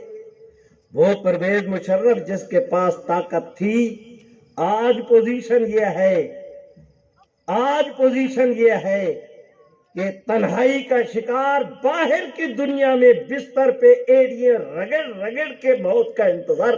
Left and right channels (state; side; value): identical; both; correlation 1.00